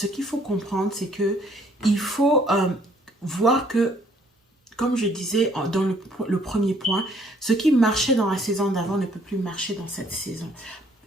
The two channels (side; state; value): both; normal; correlation 0.63